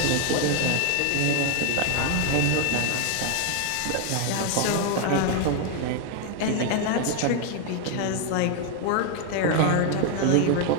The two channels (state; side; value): different; both; correlation 0.01